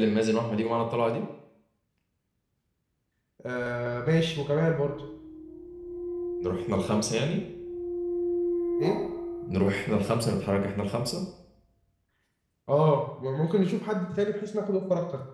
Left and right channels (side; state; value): both; identical; correlation 1.00